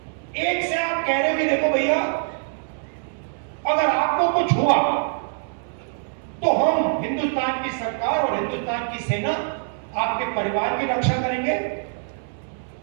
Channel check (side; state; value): left; silent; 63 dB below the other